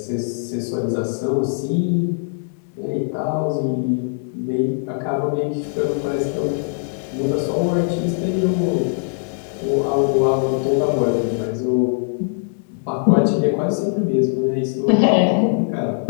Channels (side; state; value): right; silent; digital silence